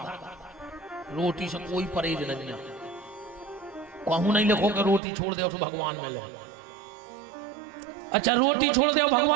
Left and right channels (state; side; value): drops out; left; at 5.0 s